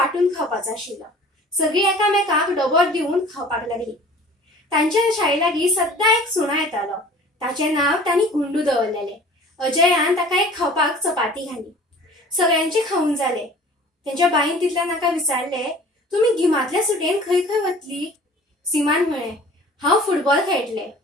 खावपाचो आशिल्लो। सगळीं एकामेकांक डबो दिवन खावपाक लागली। तांच्या शाळे लागीं सद्दां एक सुणो येतालो। ताचें नांव तांणी गुंडू दवरलेलें। अजयान ताका एक खावपाक चपाती घाली। सगळ्यांचे खाऊन जाले। तांच्या बाईन तितल्यान ताका विचारले, तुम्ही गिमांतल्या सुटयेन खंय खंय वतली? सीमान म्हळें, हांव फुटबॉल खेळटलें।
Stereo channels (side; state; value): both; normal; correlation 0.46